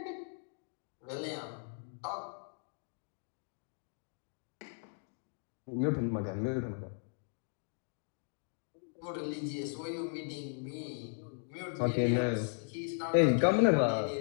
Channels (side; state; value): right; silent; 53 dB below the other